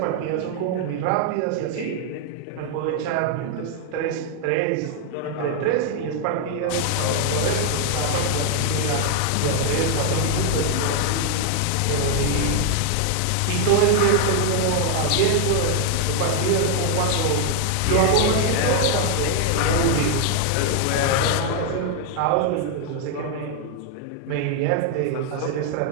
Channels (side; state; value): both; different; correlation 0.00